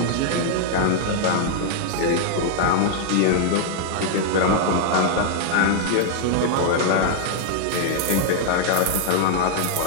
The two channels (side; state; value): both; different; correlation -0.01